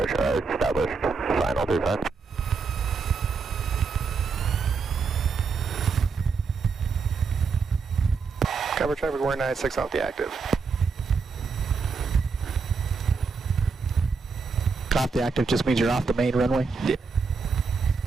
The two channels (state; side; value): quieter; left; 4.9 dB